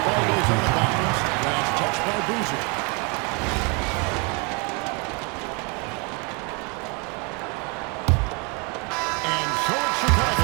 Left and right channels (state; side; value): quieter; left; 32.6 dB